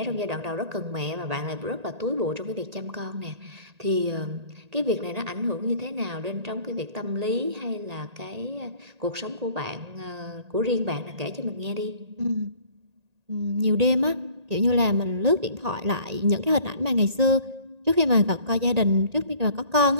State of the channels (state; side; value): late; left; 1.8 ms